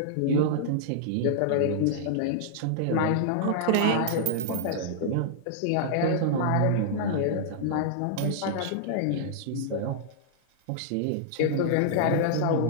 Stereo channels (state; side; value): different; both; correlation -0.02